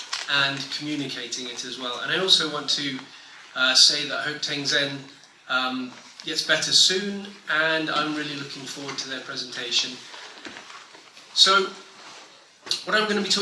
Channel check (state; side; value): identical; both; correlation 1.00